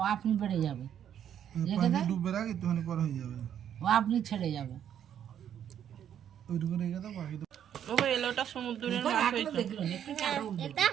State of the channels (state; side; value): quieter; left; 9.6 dB